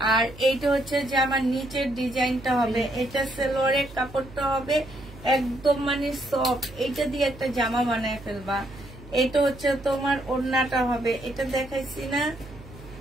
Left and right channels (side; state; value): right; noise; hum, 18 dB below the sound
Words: আর এইটা হচ্ছে জামার নিচের ডিজাইনটা হবে। এটা সালোয়ারের কাপড়টা হবে একদম মানে সফট। এটা দিয়ে একটা জামা বানায় ফেলবা। এটা হচ্ছে তোমার ওড়নাটা হবে। এটা দেখাইছি না?